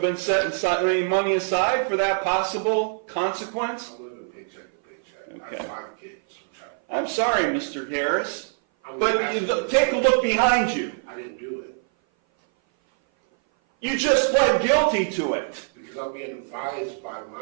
setting any money aside for that possible consequence? I'm living paycheck to paycheck. Okay. I have 5 kids. I'm sorry, Mr. Harris, but take a look behind you. I didn't do it. You just pled guilty to it. Because I'm being advised by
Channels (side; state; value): left; silent; 57 dB below the other